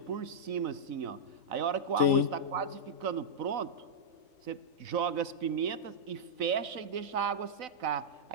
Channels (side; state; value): left; late; 4.0 ms